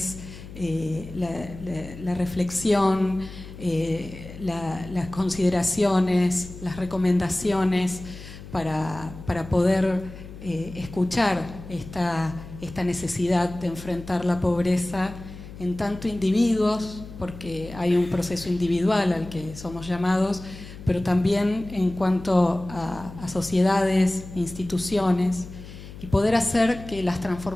la reflexión, las consideraciones, las recomendaciones para poder escuchar esta necesidad de enfrentar la pobreza en tanto individuos, porque hay un proceso individual al que somos llamados, pero también en cuanto a sociedades, instituciones, y poder hacer que las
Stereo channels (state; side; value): noise; left; hum, 14 dB below the sound